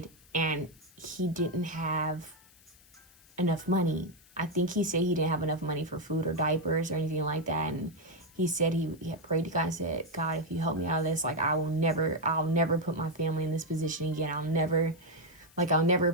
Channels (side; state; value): left; noise; hiss, 26 dB below the sound